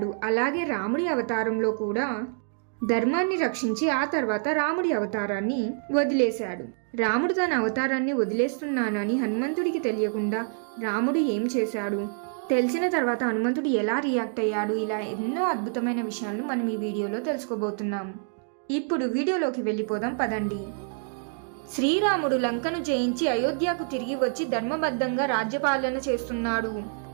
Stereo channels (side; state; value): left; silent; 60 dB below the other